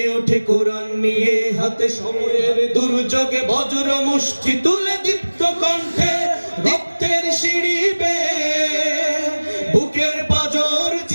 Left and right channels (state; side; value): inverted; both; correlation -1.00